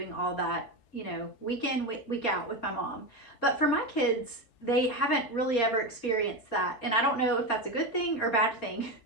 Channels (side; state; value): right; late; 4.7 ms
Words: all that, week in, week out with my mom. But for my kids, they haven't really ever experienced that. And I don't know if that's a good thing or bad thing.